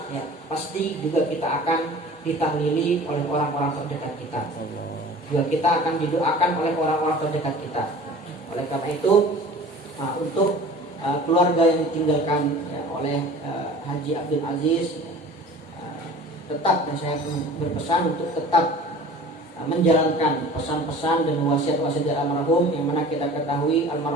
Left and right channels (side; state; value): both; normal; correlation 0.43